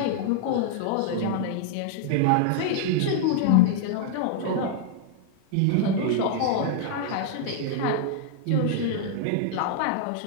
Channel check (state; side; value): different; both; correlation -0.01